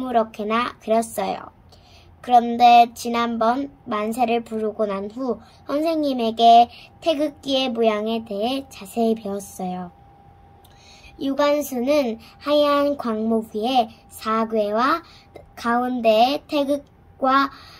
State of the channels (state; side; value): identical; both; correlation 1.00